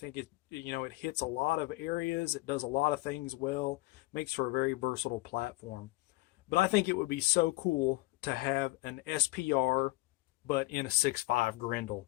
it hits a lot of areas. It does a lot of things well, makes for a very versatile platform. But I think it would be so cool to have an SPR, but in a 6.5 Grendel.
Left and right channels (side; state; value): right; quieter; 21.3 dB